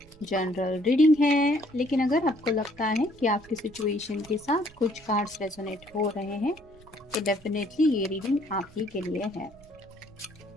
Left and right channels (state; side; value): noise; right; rumble, 24 dB below the sound